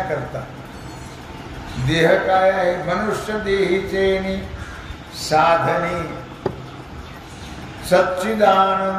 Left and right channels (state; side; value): identical; both; correlation 1.00